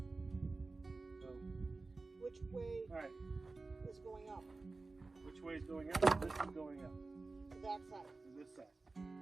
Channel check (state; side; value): quieter; left; 3.6 dB